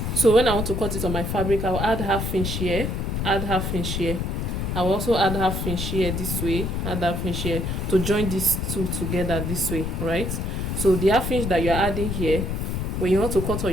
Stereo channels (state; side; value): noise; left; rumble, 2 dB below the sound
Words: So when I want to cut it on my fabric, I'll add half inch here, add half inch here. I'll also add half inch here this way, add half inch here to join these two together this way, right? So the half inch that you're adding here, when you want to cut